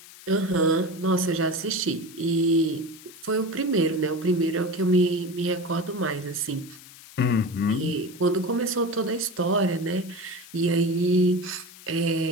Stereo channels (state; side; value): noise; left; hiss, 19 dB below the sound